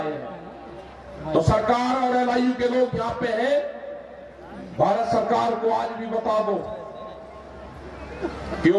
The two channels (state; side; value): identical; both; correlation 1.00